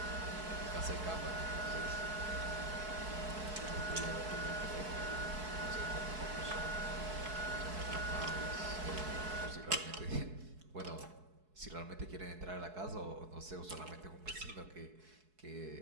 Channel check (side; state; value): left; late; 4.7 ms